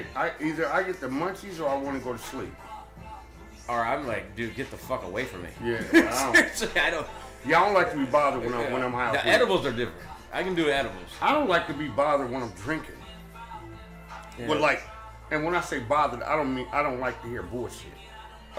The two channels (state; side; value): identical; both; correlation 1.00